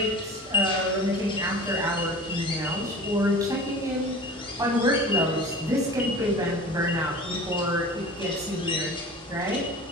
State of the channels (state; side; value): normal; both; correlation 0.38